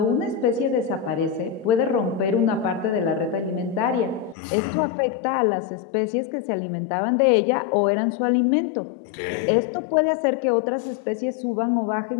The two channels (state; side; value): drops out; right; at 4.4 s